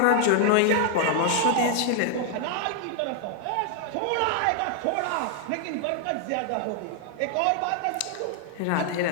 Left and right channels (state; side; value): different; both; correlation 0.00